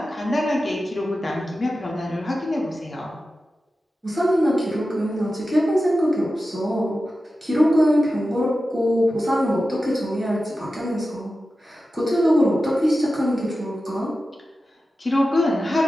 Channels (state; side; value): normal; both; correlation 0.93